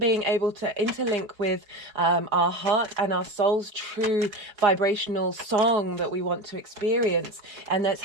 able to interlink with our heart and our soul's true vibrational song that we want to experience, and that's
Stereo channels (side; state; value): left; late; 4.6 ms